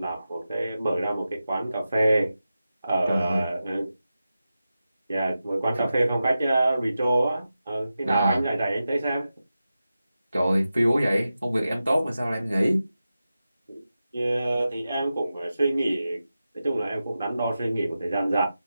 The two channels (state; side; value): inverted; both; correlation -0.92